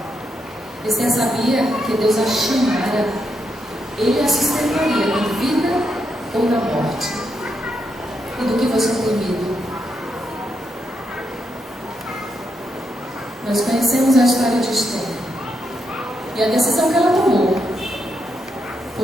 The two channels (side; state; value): both; normal; correlation 0.81